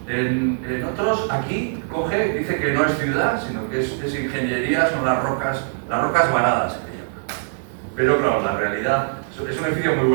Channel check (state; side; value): silent; left; digital silence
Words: En otros, aquí dice que no es ciudad, sino que es ingeniería, son las rocas varadas, que llaman. Pero claro, la realidad, es un edificio muy